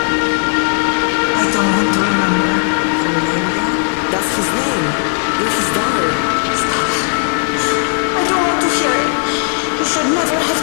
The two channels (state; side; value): silent; right; 56 dB below the other